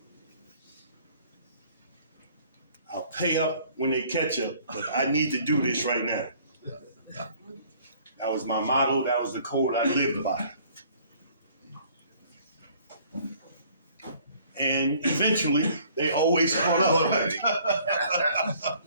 I'll pay up when they catch up, but I need to do this right now. That was my motto. That was the code I lived by. And eventually, they always caught up.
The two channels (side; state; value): both; inverted; correlation -0.57